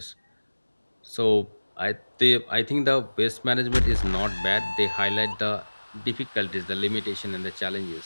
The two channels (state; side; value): inverted; both; correlation -1.00